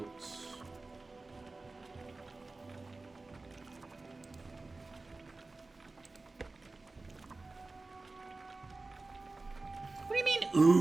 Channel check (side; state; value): left; quieter; 3.4 dB